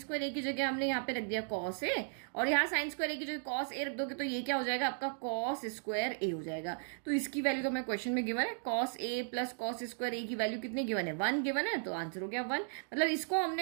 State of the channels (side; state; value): left; silent; digital silence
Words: ए की जगह हमने यहाँ पे रख दिया कॉस ए, और यहाँ साइन स्क्वायर ए की जगह कॉस ए रख दोगे तो ये क्या हो जाएगा? आपका कॉस स्क्वायर ए हो जाएगा। तो इसकी वैल्यू तो मैं क्वेश्चन में गिवन है, cos A plus cos square ए की वैल्यू कितनी गिवन है? 1 गिवन है, तो आंसर हो गया 1। मतलब इसको